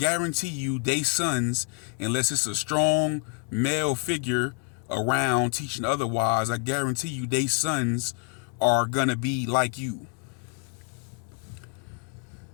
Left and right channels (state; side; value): quieter; right; 35.6 dB